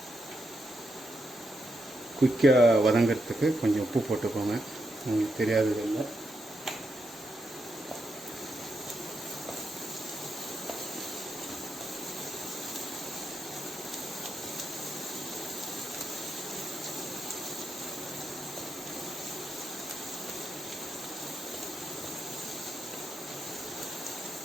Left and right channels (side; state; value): both; normal; correlation 0.83